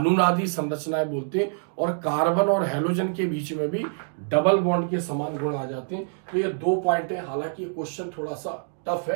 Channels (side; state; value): left; silent; digital silence